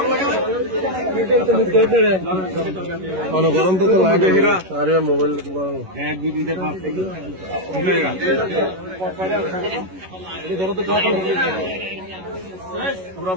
গরম তো লাগে আরে মোবাইল এক দুই তিনটে পাঁচ থেকে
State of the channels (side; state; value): left; late; 11 ms